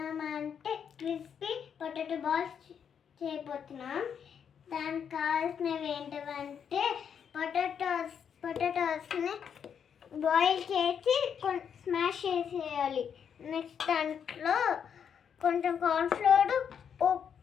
క్రిస్పీ పొటాటో బాల్స్ చేయబోతున్నాం. దానికి కావాల్సినవి ఏంటంటే పొటాటోస్ని బాయిల్ చేసి స్మాష్ చేసేయాలి. నెక్స్ట్ దాంట్లో కొంచెం కార్న్ఫ్లోర్,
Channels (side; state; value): right; quieter; 7.7 dB